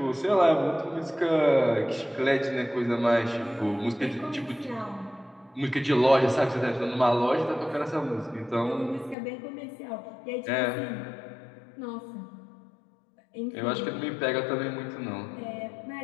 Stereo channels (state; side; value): drops out; right; at 9.2 s